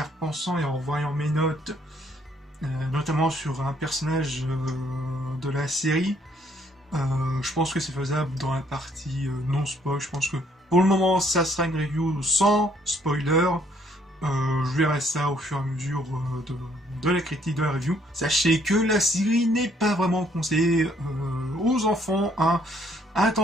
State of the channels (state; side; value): normal; both; correlation 0.66